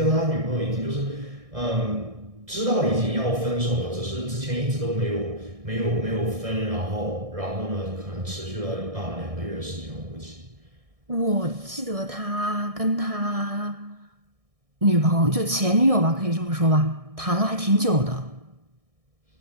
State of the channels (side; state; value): left; late; 1.6 ms